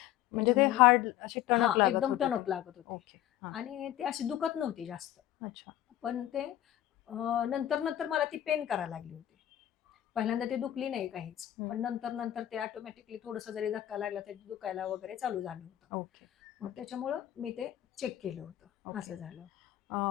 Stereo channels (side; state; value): right; quieter; 12.7 dB